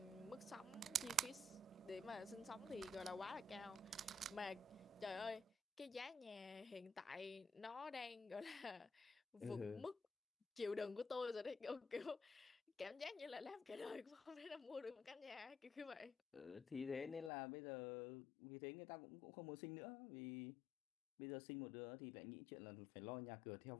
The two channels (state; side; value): drops out; right; at 17.3 s